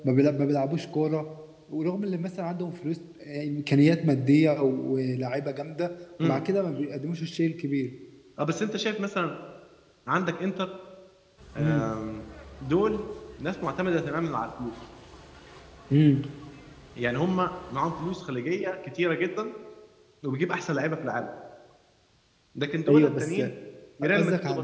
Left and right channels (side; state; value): both; identical; correlation 1.00